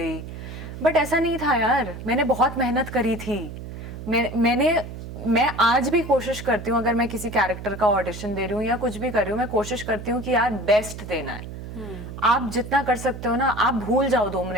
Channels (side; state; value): right; noise; hum, 10 dB below the sound